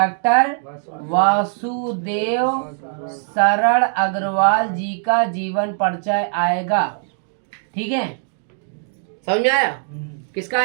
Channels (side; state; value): left; silent; digital silence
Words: वासुदेव सरल अग्रवाल जी का जीवन परिचय आएगा। ठीक है, समझ में आया? किसका